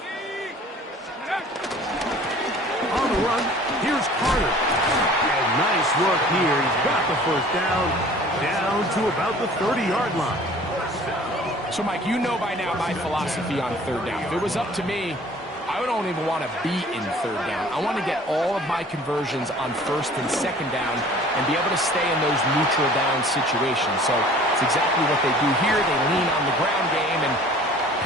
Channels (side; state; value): both; normal; correlation 0.49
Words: On the run, here's Carter. And nice work here. He's got the first down to about the 30-yard line. So, Mike, you know by now my philosophy on third down. If it was up to me, I don't even want to be in third down. I want to get all of my conversions on first and second down and be able to stay in those neutral down situations. So it's exactly what they do here. They lean on the ground game and